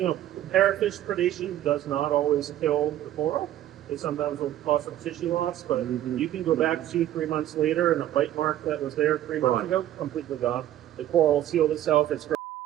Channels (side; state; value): left; quieter; 12.6 dB